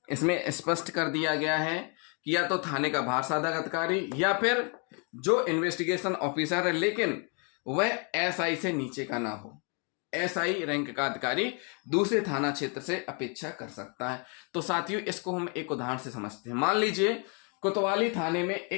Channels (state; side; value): quieter; right; 35.8 dB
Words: इसमें स्पष्ट कर दिया गया है कि या तो थाने का भार साधक अधिकारी या फिर जो इन्वेस्टिगेशन ऑफिसर है लेकिन वह SI से नीचे का ना हो, SI रैंक का अधिकारी दूसरे थाना क्षेत्र से अपेक्षा कर सकता है। तो साथियों, इसको हम एक उदाहरण से समझते हैं। मान लीजिए कोतवाली थाने में